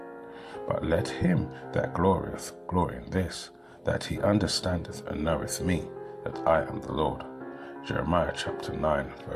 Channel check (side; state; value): both; identical; correlation 1.00